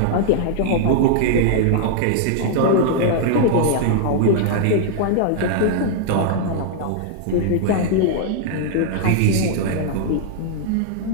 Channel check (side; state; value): both; different; correlation -0.01